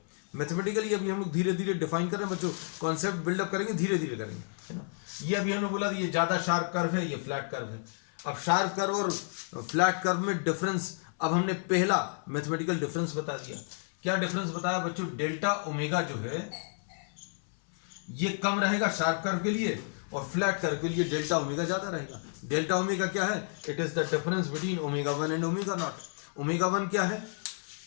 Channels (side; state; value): right; silent; 57 dB below the other